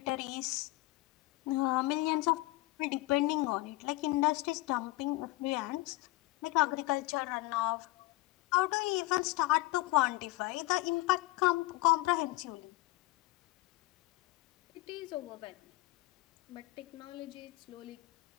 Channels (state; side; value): quieter; right; 19.9 dB